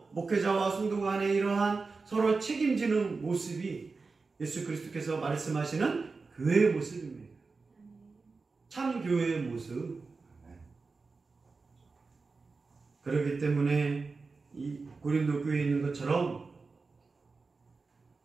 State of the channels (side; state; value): left; quieter; 4.2 dB